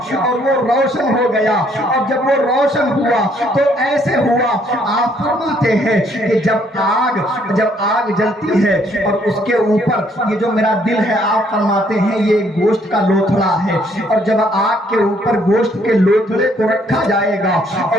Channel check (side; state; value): both; normal; correlation 0.67